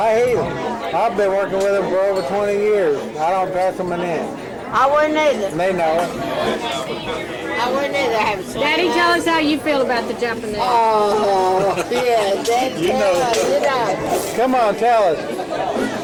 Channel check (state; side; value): identical; both; correlation 1.00